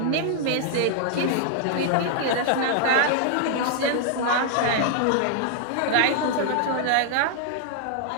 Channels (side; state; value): both; different; correlation -0.01